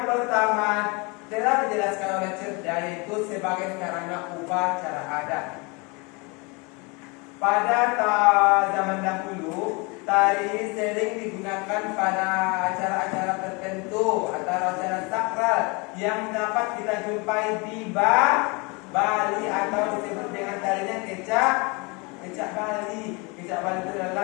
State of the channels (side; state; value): right; quieter; 28.9 dB